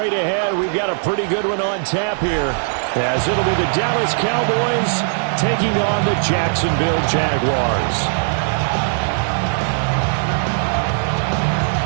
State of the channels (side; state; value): left; silent; digital silence